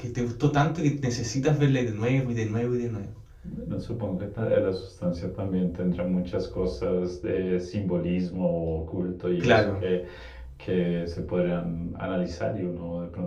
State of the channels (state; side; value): identical; both; correlation 1.00